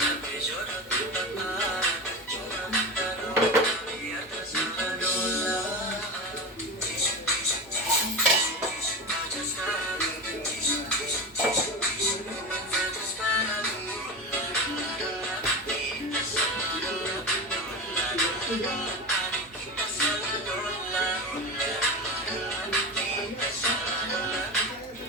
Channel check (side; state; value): both; normal; correlation 0.23